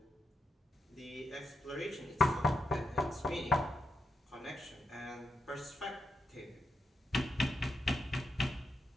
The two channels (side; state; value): both; normal; correlation 0.84